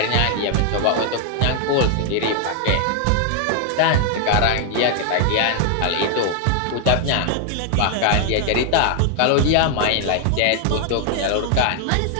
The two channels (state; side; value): different; both; correlation 0.00